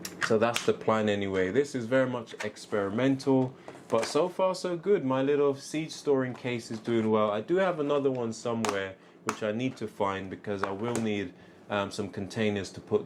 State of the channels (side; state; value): both; identical; correlation 1.00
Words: So that's the plan anyway. This is very much experimental, but so far so good. My little seed storing case is doing well. I do have another one somewhere which I need to find, because I will need some containers to